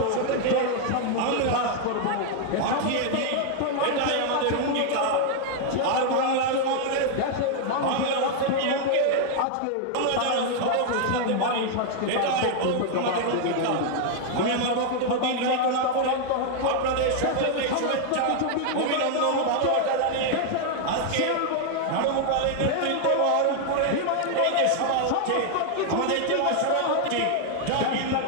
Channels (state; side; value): different; both; correlation 0.00